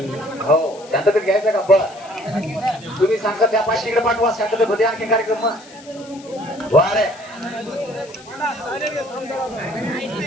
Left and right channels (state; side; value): noise; left; hiss, 21 dB below the sound